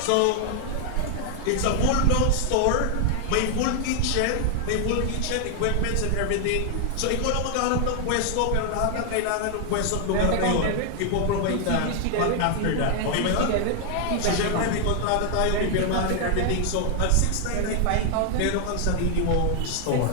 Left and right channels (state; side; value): different; both; correlation 0.00